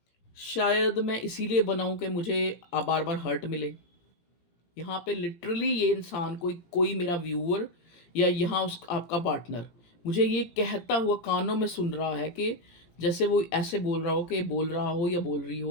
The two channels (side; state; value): right; late; 17 ms